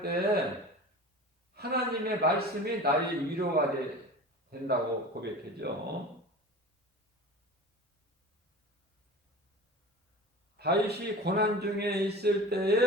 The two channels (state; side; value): normal; both; correlation 0.36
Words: 때 하나님의 말씀이 나의 위로가 된다고 고백했죠. 다윗이 고난 중에 있을